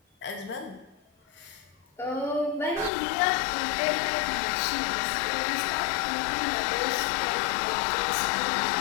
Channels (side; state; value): right; drops out; at 2.9 s